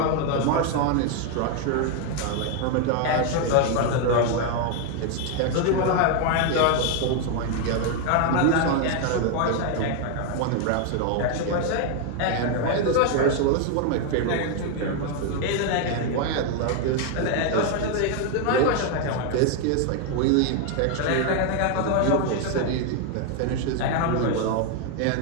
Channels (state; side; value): different; both; correlation 0.01